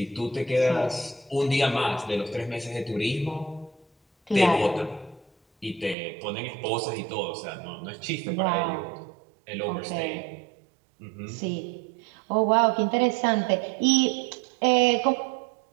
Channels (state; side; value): drops out; left; at 6.0 s